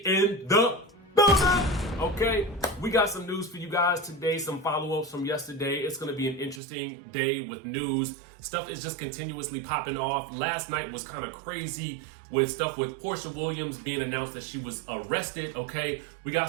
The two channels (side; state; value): left; drops out; at 6.6 s